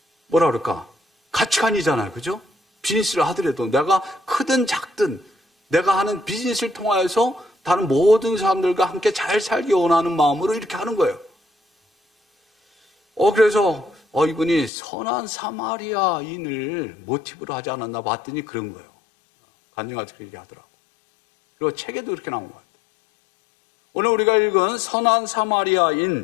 뭐라 그럴까? 가치관이잖아요. 그죠? 비즈니스를 하더라도 내가 크든 작든 내가 하는 비즈니스를 통하여서 다른 모든 사람들과 함께 잘 살기 원하는 마음으로 이렇게 하는 거예요. 그래서 이분이 선한 사마리아인을 모티브로 하지 않았나 봤더니 그런 거예요. 간증하지 그렇게 하더라고. 그리고 책에도 이렇게 나온 것 같아요. 오늘 우리가 읽은 선한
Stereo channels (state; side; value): drops out; right; at 14.7 s